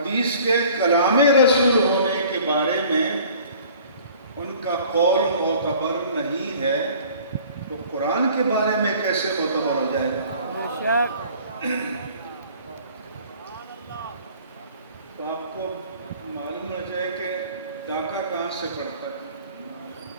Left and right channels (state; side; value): inverted; both; correlation -0.50